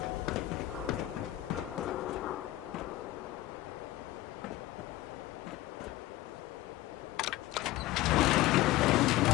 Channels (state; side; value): quieter; right; 16.5 dB